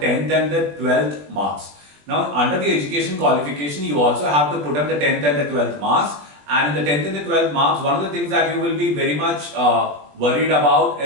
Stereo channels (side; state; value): left; late; 20 ms